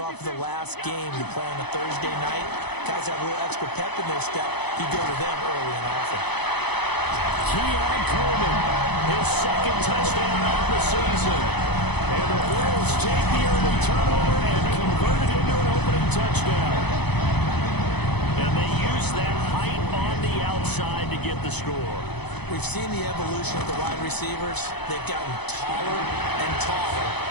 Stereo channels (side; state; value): right; late; 0.98 ms